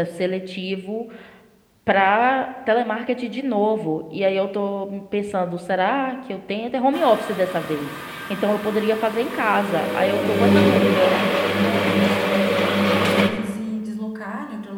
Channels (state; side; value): identical; both; correlation 1.00